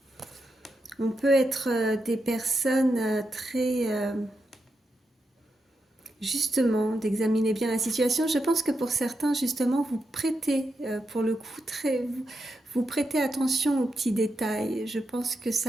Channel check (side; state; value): both; normal; correlation 0.86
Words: On peut être des personnes très... justement, d'examiner bien la situation. Je pense que pour certains, justement, vous prêtez, pour le coup, vous prêtez attention aux petits détails. Je pense que